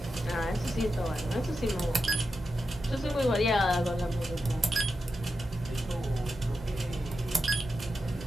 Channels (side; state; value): both; normal; correlation 0.89